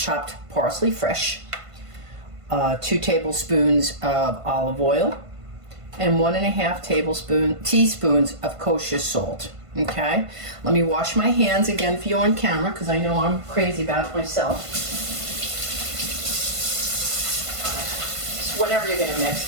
parsley, fresh. 2 tablespoons of olive oil, and 1.5 teaspoons of kosher salt. Okay, let me wash my hands again for you on camera because I know I'm crazy about it myself. So whenever you're gonna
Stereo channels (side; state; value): left; late; 1.5 ms